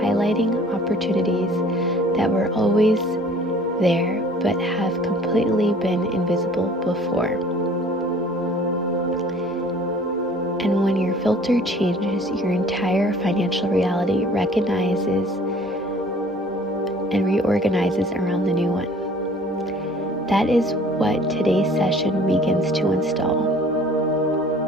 opportunities that were always there but have completely been invisible before. And when your filter changes, your entire financial reality recognizes and reorganizes around the new one. That is what today's session begins to install.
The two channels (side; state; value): both; normal; correlation 0.51